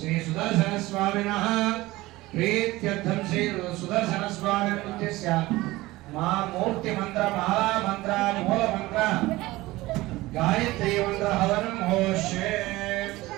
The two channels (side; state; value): left; quieter; 19.1 dB